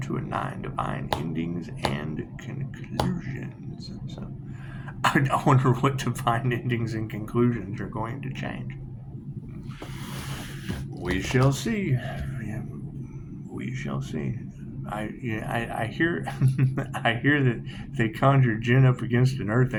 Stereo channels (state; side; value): identical; both; correlation 1.00